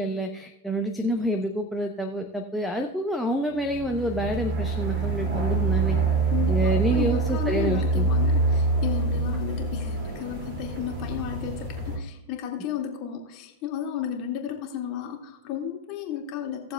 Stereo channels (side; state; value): both; normal; correlation 0.23